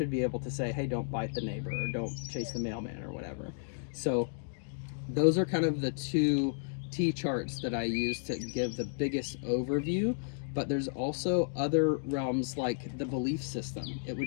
be able to say, hey, don't bite the neighbor, or don't chase the mailman, or whatever. So those are kind of the two T-charts that I use to give the biggest overview. But there's also other realms like the belief system. It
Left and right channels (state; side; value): silent; right; digital silence